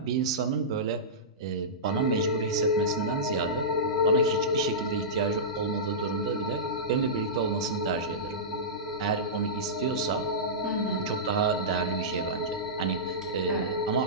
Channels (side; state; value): both; normal; correlation -0.17